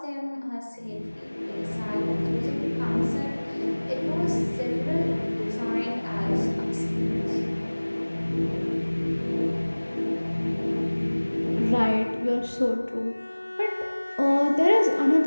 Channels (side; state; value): both; inverted; correlation -1.00